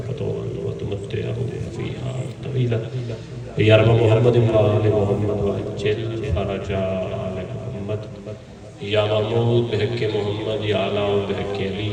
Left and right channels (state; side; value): identical; both; correlation 1.00